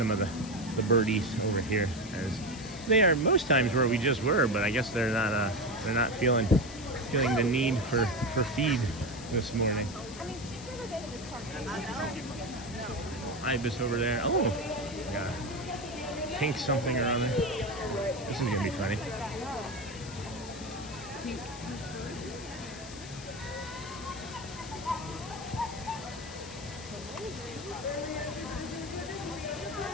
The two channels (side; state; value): left; noise; hiss, 15 dB below the sound